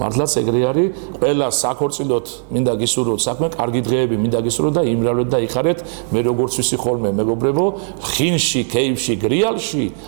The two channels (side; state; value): left; silent; digital silence